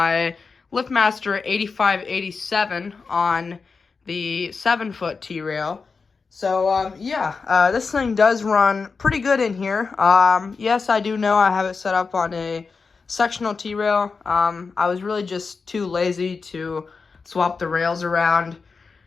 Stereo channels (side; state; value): right; quieter; 4.8 dB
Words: LiftMaster 8587 on the 7-foot T-rail. So, this thing does run pretty good in here. Yes, I do know I have it set up on a sectional T-rail. I was really just too lazy to swap the rails around.